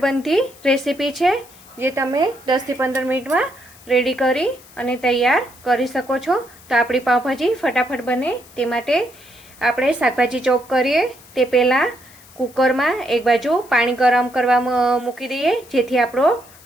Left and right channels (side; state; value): left; noise; hiss, 23 dB below the sound